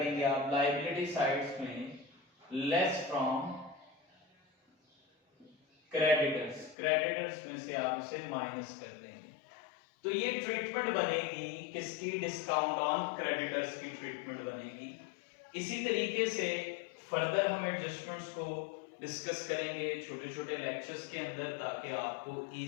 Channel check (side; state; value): right; drops out; at 6.8 s